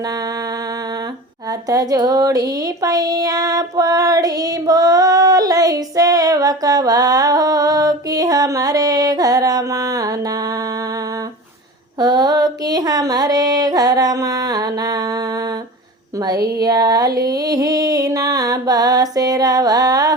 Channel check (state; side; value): normal; both; correlation 0.33